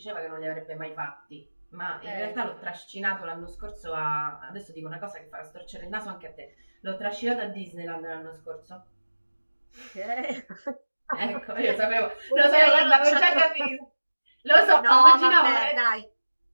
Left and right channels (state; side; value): inverted; both; correlation -1.00